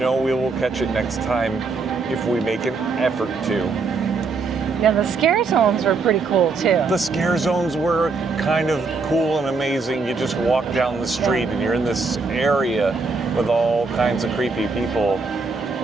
we will catch it next time if we make an effort to. Yeah, the scare zones were pretty cool too. The scare zones were kind of cool and amazing. You just walk down the street and you're in this area with all kinds of creepy people,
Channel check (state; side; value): quieter; left; 4.2 dB